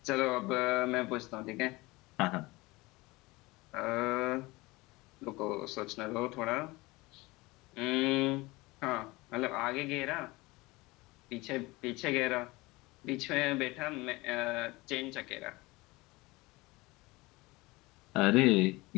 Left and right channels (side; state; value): right; quieter; 22.2 dB